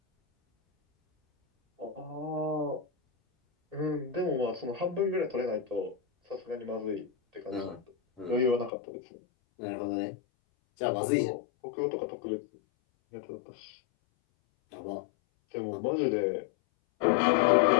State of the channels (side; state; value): right; drops out; at 8.7 s